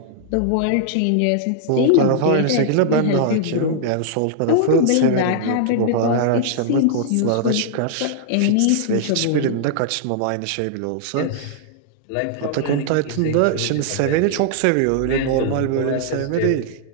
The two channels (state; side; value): different; both; correlation -0.01